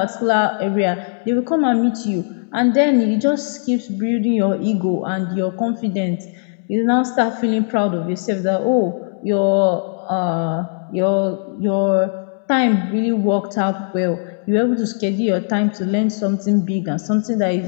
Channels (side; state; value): right; silent; 67 dB below the other